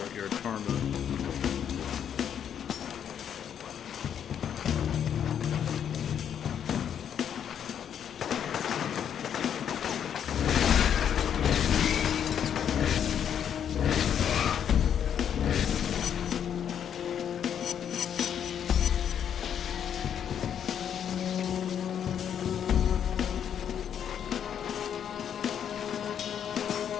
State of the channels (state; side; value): quieter; right; 8.8 dB